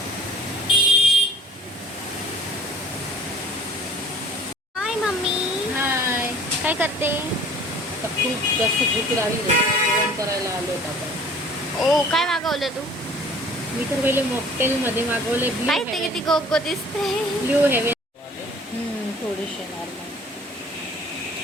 हाय मम्मी. हाय. काय करते? खूप जास्त भूक लागली, जेवण करायला आलो आपण. ओ, काय मागवलं तू? मी तर पहिले मॉकटेलमध्ये मागवले. काय ते किती गोगो दिसते. Blue heaven. थोडीशी नॉर्मल.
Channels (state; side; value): normal; both; correlation 0.50